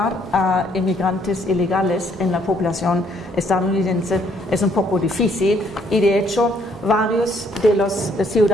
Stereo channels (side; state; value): both; normal; correlation 0.66